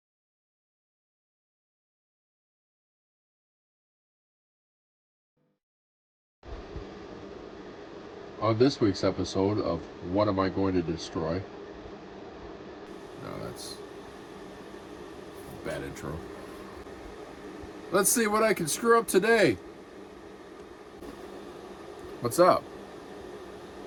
On this week's episode of What Am I Going to Destroy? No, that's a bad intro. Let's see what I can screw up today. What's up?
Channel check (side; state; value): both; identical; correlation 1.00